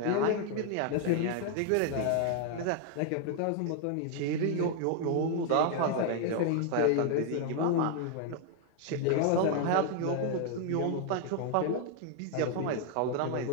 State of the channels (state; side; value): different; both; correlation 0.00